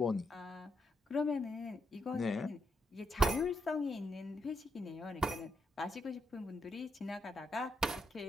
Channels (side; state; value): both; normal; correlation 0.81